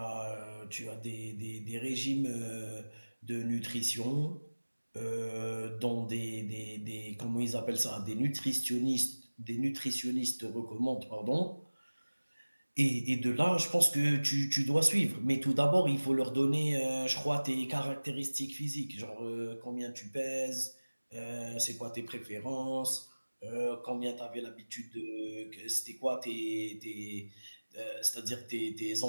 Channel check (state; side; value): inverted; both; correlation -1.00